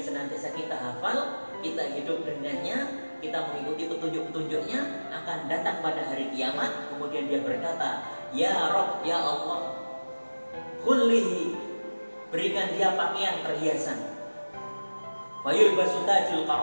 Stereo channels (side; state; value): both; inverted; correlation -1.00